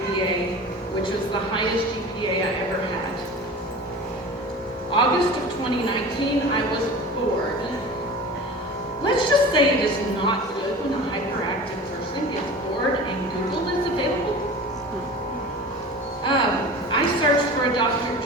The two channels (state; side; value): normal; both; correlation 0.36